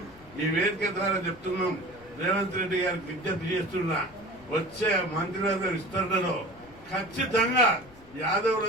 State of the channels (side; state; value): left; noise; rumble, 23 dB below the sound